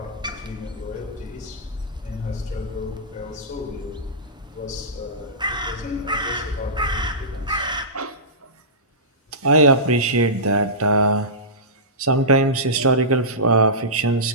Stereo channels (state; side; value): normal; both; correlation -0.18